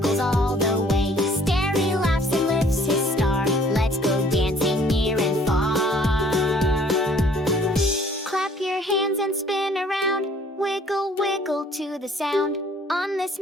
all the way. Stary laughs and lifts his star. Let's go dancing near and far. Clap your hands and spin around. Wiggle, wiggle to the sound. On this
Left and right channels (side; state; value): both; normal; correlation 0.57